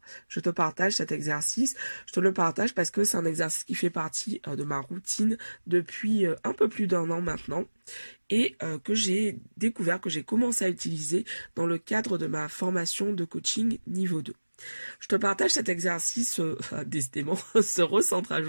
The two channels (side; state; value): both; inverted; correlation -1.00